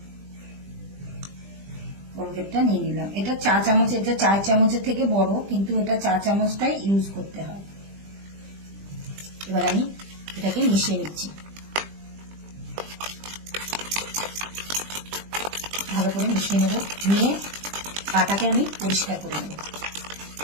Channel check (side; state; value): left; late; 20 ms